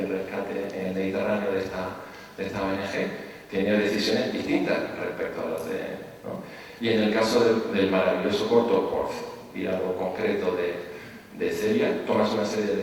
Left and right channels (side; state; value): both; identical; correlation 1.00